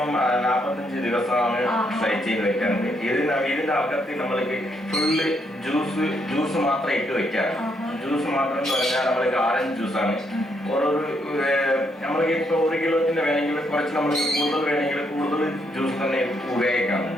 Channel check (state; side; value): normal; both; correlation 0.75